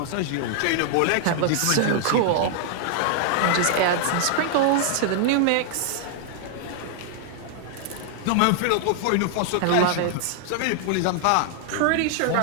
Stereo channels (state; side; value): different; both; correlation 0.00